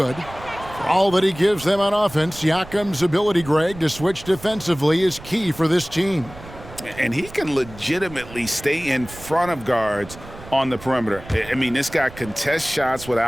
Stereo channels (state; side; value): noise; right; rumble, 17 dB below the sound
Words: For all that he gives them on offense, Siakam's ability, Greg, to switch defensively is key for this team. And he can legitimately stay in front of guards on the perimeter. I mean, this guy contests shots